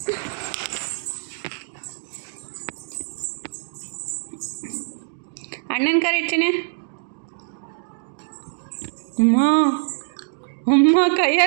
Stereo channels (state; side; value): silent; left; digital silence